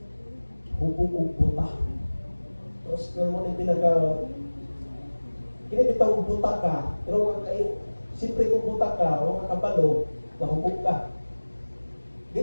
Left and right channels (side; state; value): both; inverted; correlation -1.00